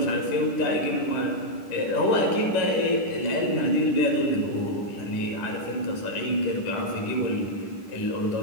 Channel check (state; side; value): late; right; 10 ms